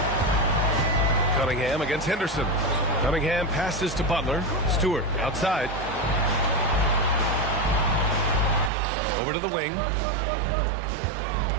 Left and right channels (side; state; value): left; drops out; at 8.7 s